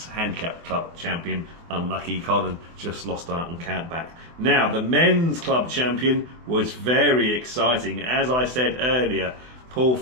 handicap club champion. Unlucky Colin just lost out on countback. Now the men's club champion was very exciting. As I said earlier, Paul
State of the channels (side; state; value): left; late; 24 ms